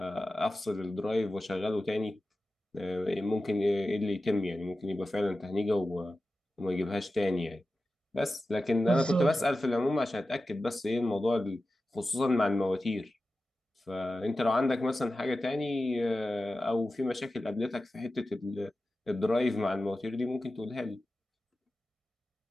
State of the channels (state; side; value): normal; both; correlation 0.94